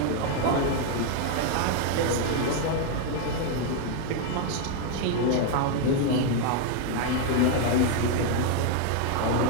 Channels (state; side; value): different; both; correlation 0.01